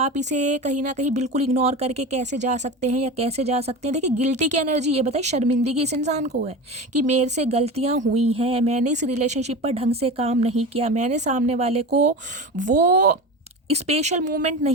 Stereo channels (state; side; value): normal; both; correlation 0.28